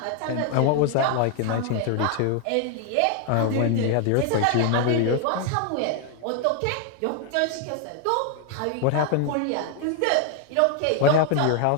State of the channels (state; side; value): different; both; correlation 0.00